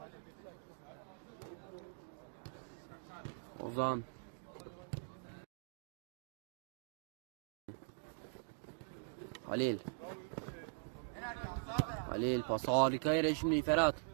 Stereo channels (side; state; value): left; silent; digital silence